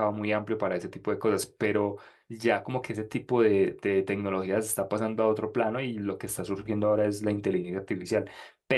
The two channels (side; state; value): both; identical; correlation 1.00